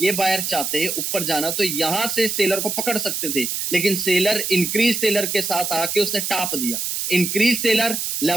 बायर चाहते ऊपर जाना, तो यहां से सेलर को पकड़ सकते थे, लेकिन सेलर इंक्रीज सेलर के साथ आके उसने टाप दिया। इंक्रीज सेलर,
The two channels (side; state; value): right; noise; hiss, 2 dB below the sound